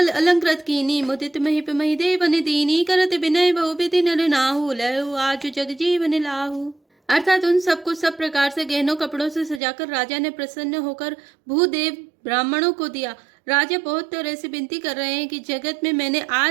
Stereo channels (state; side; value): drops out; left; at 9.6 s